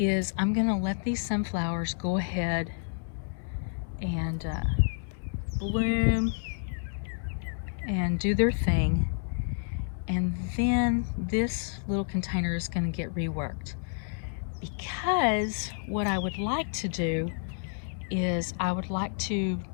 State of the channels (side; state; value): right; silent; 58 dB below the other